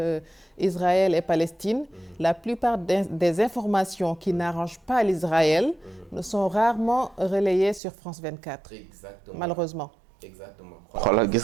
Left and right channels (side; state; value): left; drops out; at 7.8 s